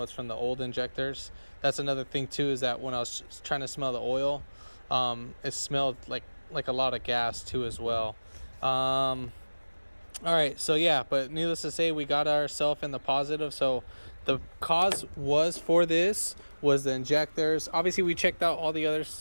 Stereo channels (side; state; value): both; inverted; correlation -1.00